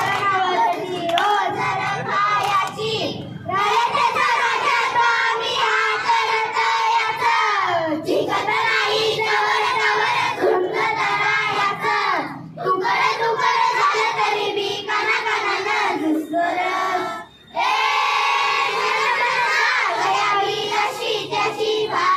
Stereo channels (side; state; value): both; identical; correlation 1.00